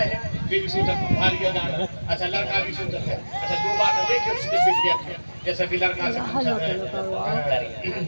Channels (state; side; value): inverted; both; correlation -1.00